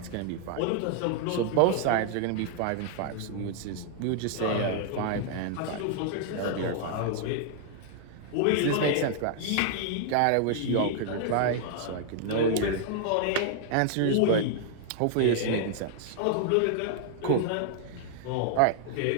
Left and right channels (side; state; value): both; different; correlation 0.00